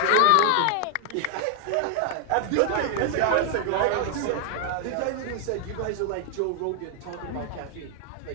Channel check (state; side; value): different; both; correlation 0.00